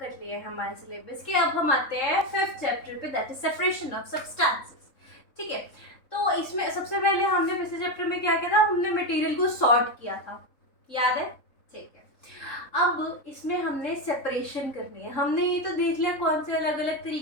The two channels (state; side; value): late; right; 3.7 ms